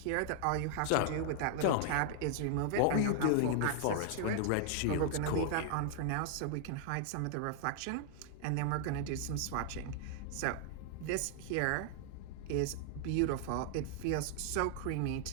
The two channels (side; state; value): both; different; correlation -0.01